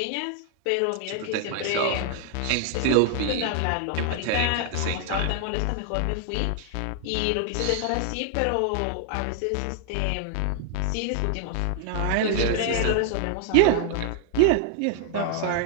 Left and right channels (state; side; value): different; both; correlation 0.00